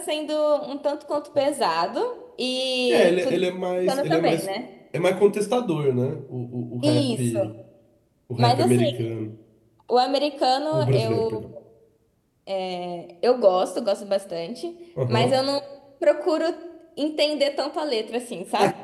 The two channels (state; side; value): identical; both; correlation 1.00